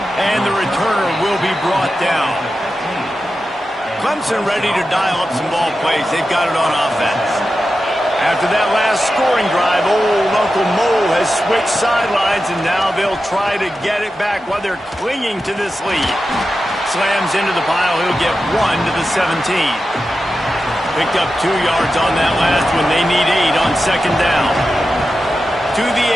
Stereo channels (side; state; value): both; normal; correlation 0.91